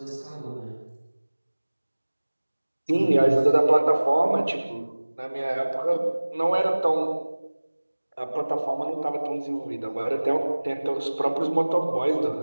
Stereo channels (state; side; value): inverted; both; correlation -1.00